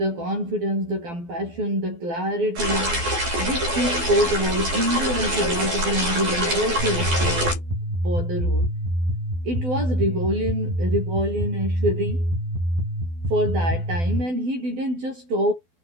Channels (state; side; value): late; left; 12 ms